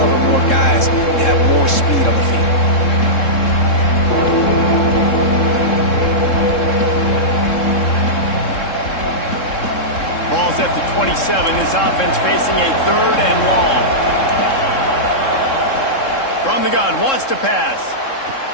more guys and have more speed on the field. Ball's at the 27. This offense facing a third and long. From the gun, wants to pass.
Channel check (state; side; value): late; right; 3.7 ms